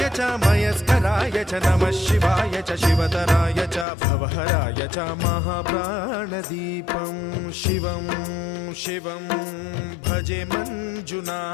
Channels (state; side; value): drops out; right; at 3.9 s